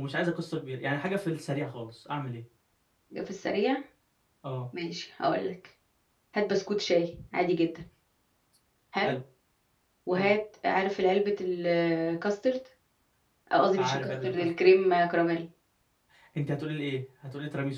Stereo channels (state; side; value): identical; both; correlation 1.00